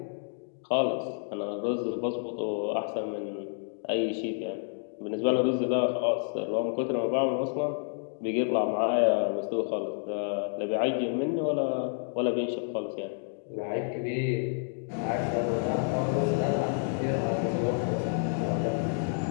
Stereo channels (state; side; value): silent; right; digital silence